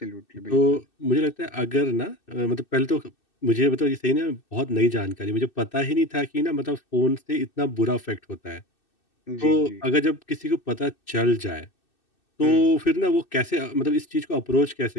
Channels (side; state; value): right; late; 2.6 ms